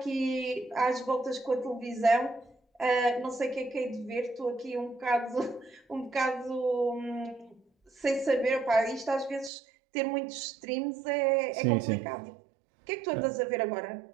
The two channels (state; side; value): drops out; left; at 9.5 s